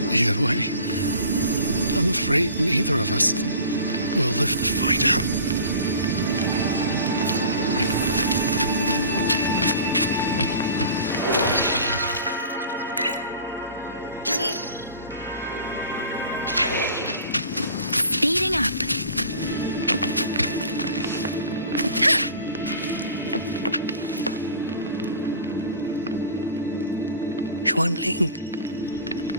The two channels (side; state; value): both; inverted; correlation -0.43